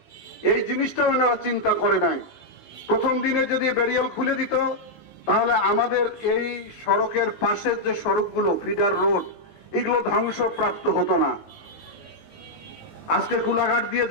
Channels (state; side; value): late; right; 19 ms